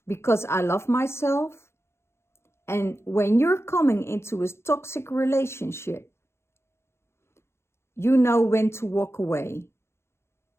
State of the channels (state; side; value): late; right; 0.12 ms